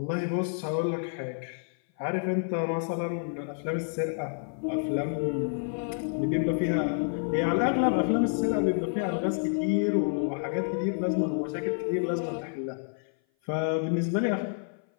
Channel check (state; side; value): silent; right; 56 dB below the other